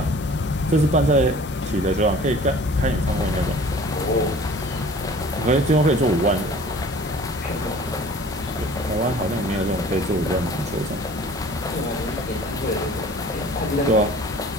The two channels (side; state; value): both; normal; correlation 0.47